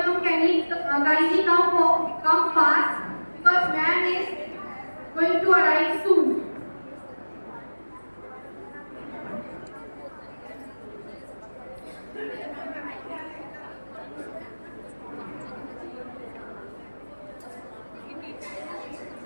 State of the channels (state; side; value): inverted; both; correlation -1.00